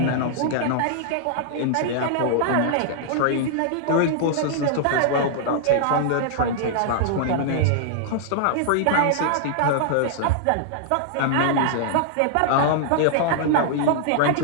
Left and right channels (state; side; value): different; both; correlation -0.01